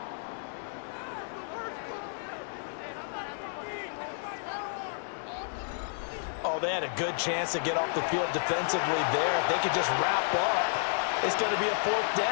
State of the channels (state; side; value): silent; right; 57 dB below the other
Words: Oh, they had a good chance to get off the field defensively there. If they could just wrap up, it's going to be a 4th